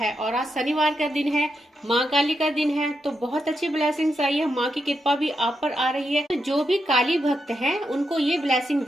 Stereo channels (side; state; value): both; normal; correlation 0.84